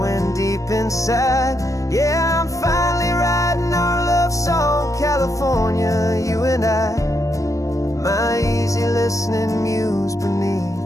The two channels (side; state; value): right; late; 0.16 ms